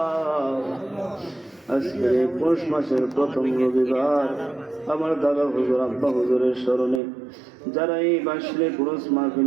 আজকে পৌষ মাসের প্রথম রবিবার আমার দাদা হুজুর আব্বা হুজুরের স্মরণে যারা এই বাসলে পুরুষ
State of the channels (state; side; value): drops out; left; at 7.0 s